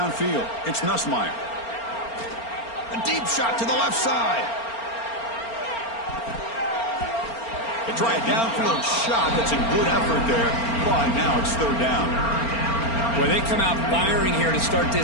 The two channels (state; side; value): late; right; 4.4 ms